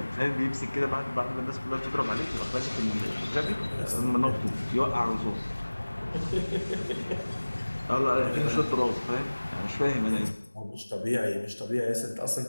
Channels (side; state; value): both; inverted; correlation -1.00